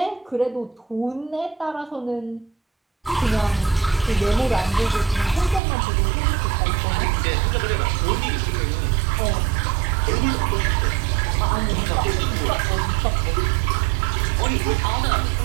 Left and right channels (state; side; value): drops out; left; at 5.6 s